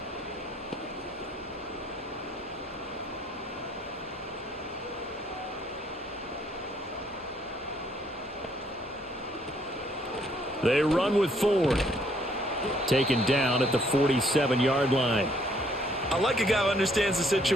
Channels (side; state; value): both; normal; correlation 0.66